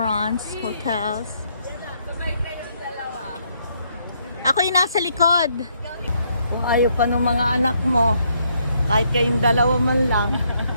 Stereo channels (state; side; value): inverted; both; correlation -0.73